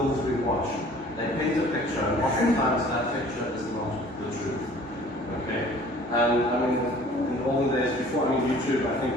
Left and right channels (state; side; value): normal; both; correlation 0.50